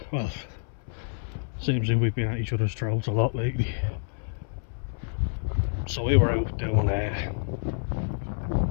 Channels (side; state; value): right; silent; 59 dB below the other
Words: Well, seems like we've been at each other's throats a lot lately. So we were out doing